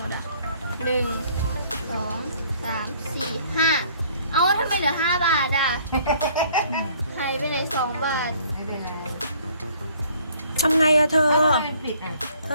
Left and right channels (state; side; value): inverted; both; correlation -0.59